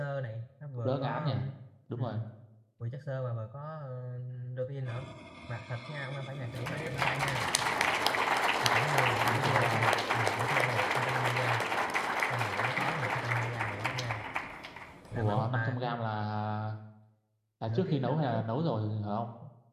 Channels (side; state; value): both; identical; correlation 1.00